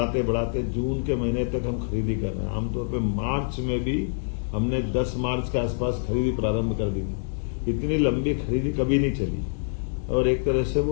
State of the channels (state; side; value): silent; right; digital silence